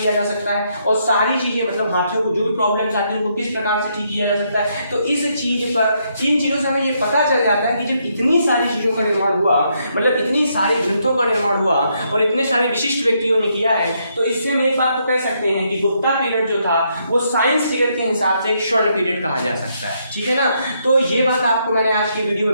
जा सकता है, और सारी चीजें मतलब हाथियों को जो भी प्रॉब्लम्स आती हैं उनको किस प्रकार से ठीक किया जा सकता है। तो इस चीज पर, इन चीजों से हमें ये पता चल जाता है कि जब इतनी सारी चीजों का निर्माण हुआ, मतलब इतनी सारे ग्रंथों का निर्माण हुआ और इतने सारे विशिष्ट व्यक्तियों ने किया है, तो इससे हम एक बात तो कह सकते हैं कि गुप्ता पीरियड जो था वो साइंस पीरियड के हिसाब से एक स्वर्ण पीरियड कहा जा सकता है, ठीक है ना। तो ये बात आपको मैंने आज की वीडियो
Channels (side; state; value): both; inverted; correlation -0.76